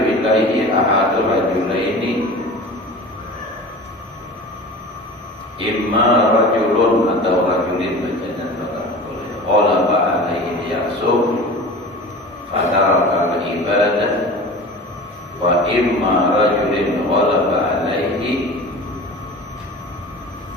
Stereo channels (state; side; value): normal; both; correlation 0.36